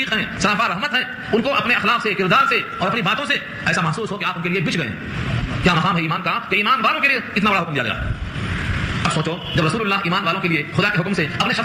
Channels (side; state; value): both; identical; correlation 1.00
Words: ہیں, سراپا رحمت ہیں. ان کو اپنے اخلاق سے, کردار سے اور اپنی باتوں سے ایسا محسوس ہو کہ آپ ان کے لیے بچ گئے ہیں. کیا مقام ہے ایمان کا کہ ایمان والوں کے لیے اتنا بڑا حکم دیا گیا. اب سوچو جب رسول اللہ ایمان والوں کے لیے خدا کے حکم سے اپنے